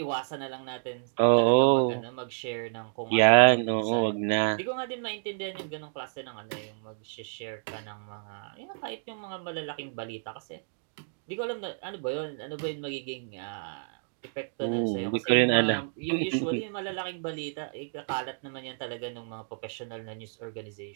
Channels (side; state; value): left; silent; digital silence